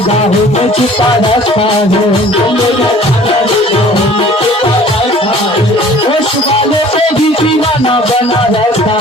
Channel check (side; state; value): both; normal; correlation 0.49